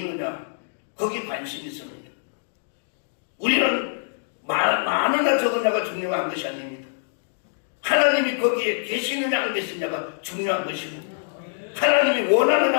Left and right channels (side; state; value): right; silent; digital silence